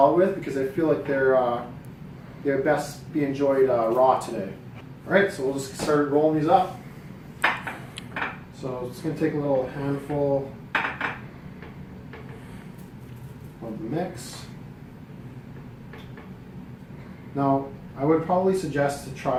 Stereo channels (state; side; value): identical; both; correlation 1.00